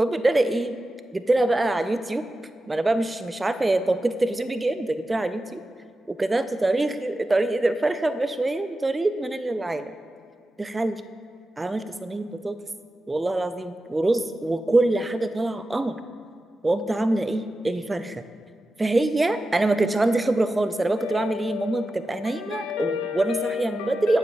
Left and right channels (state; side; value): normal; both; correlation 0.92